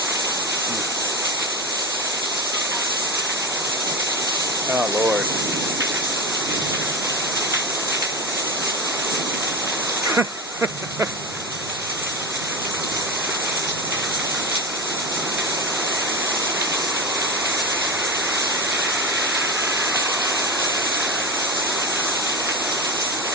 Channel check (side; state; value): both; normal; correlation 0.20